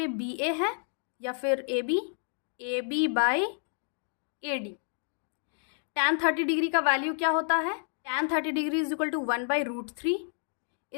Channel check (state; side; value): silent; right; digital silence